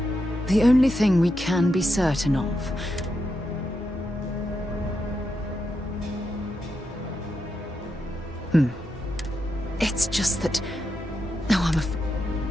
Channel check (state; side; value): normal; both; correlation 0.85